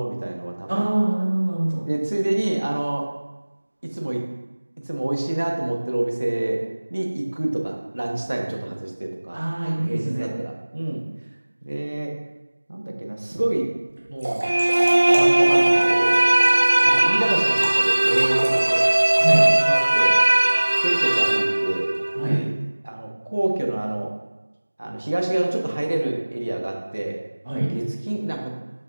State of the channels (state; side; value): inverted; both; correlation -1.00